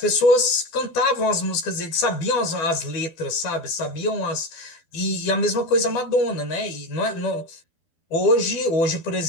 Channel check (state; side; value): late; right; 12 ms